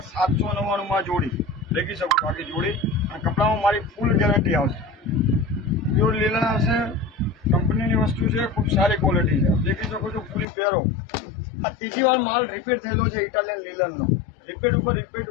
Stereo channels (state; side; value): drops out; right; at 10.5 s